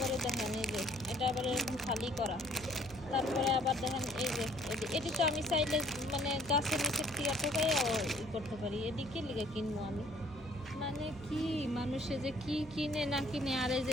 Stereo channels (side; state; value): left; noise; hum, 21 dB below the sound